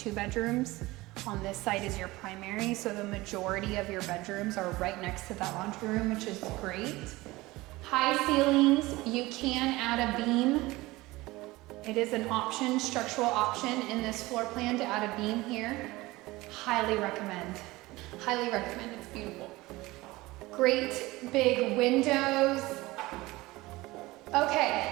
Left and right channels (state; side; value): quieter; left; 20.1 dB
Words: bedrooms. On this side is your primary, so the majority of your bedrooms are right next to that laundry room, which is great. High ceilings, you can add a beam. It is an option, structural option in this floor plan to add a beam here. Highly recommend. Highly recommend, it's beautiful. Great big windows. Okay,